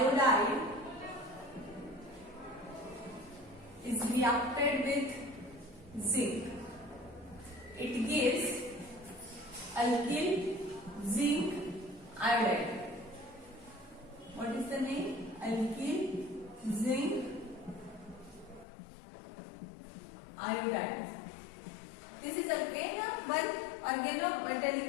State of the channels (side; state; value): right; drops out; at 18.7 s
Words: is reacted with zinc. It gives alkyl zinc iodide. What is the name? Alkyl zinc iodide. This is again one